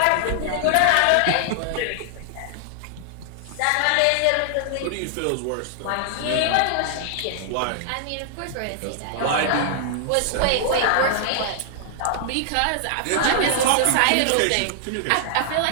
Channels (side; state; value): both; different; correlation -0.01